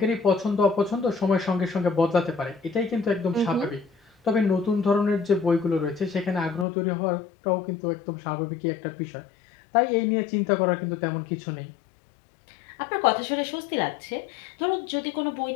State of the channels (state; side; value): drops out; right; at 6.7 s